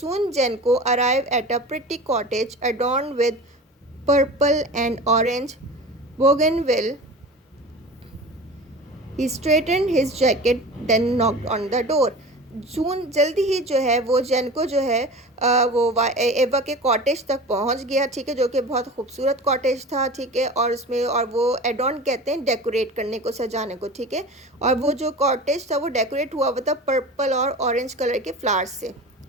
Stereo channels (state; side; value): normal; both; correlation 0.35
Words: Jenko arrive at a pretty cottage adorned with purple and orange bougainville. He straightened his jacket, then knocked on the door. जून जल्दी ही जो है वो जेनको जो है वो एवा के कॉटेज तक पहुंच गया, ठीक है, जो कि बहुत खूबसूरत कॉटेज था, ठीक है, और उसमें और वो एडॉन कहते हैं डेकोरेट करने को, सजाने को, ठीक है, और वो जो कॉटेज था वो डेकोरेट हुआ हुआ था पर्पल और ऑरेंज कलर के फ्लावर्स से,